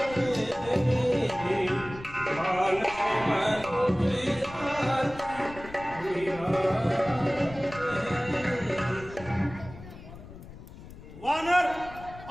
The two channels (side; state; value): left; noise; rumble, 16 dB below the sound